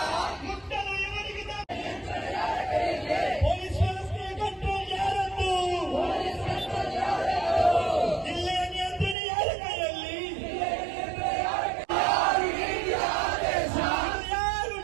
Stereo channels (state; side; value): drops out; left; at 9.2 s